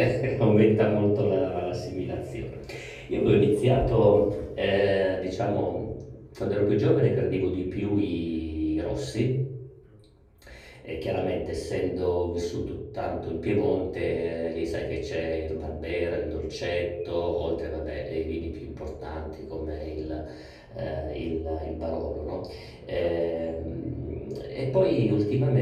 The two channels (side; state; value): both; identical; correlation 1.00